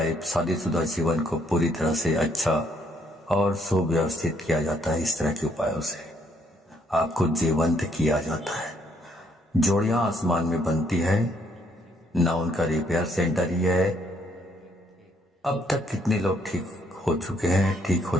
शादीशुदा जीवन को पूरी तरह से अच्छा और सुव्यवस्थित किया जाता है। इस तरह के उपायों से आपको जीवंत किया जाता है। जोड़ियां आसमान में बनती है ना, उनका रिपेयर सेंटर ही है। अब तक कितने लोग ठीक हो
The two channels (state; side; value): normal; both; correlation 0.69